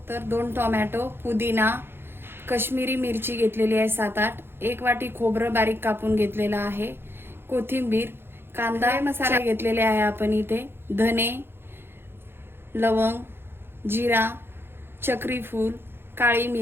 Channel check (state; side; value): late; left; 0.11 ms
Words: तर 2 टोमॅटो, पुदिना, कश्मीरी मिरची घेतलेली आहे 7-8, 1 वाटी खोबरं बारीक कापून घेतलेला आहे, कोथिंबीर, कांदा, मसाले घेतलेले आहे आपण इथे, धने, लवंग, जिरा, चक्री फूल, काळी